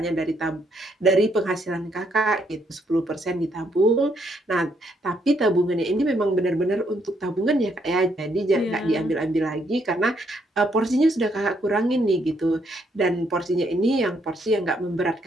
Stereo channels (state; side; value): normal; both; correlation 0.73